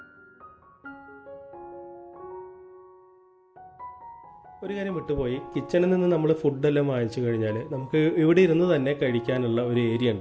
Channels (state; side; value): identical; both; correlation 1.00